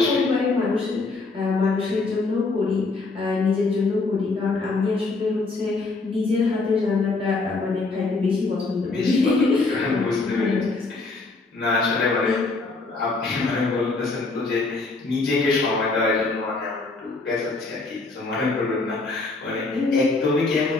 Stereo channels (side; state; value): right; quieter; 3.6 dB